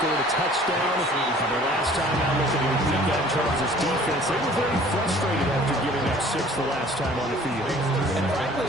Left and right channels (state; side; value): normal; both; correlation 0.51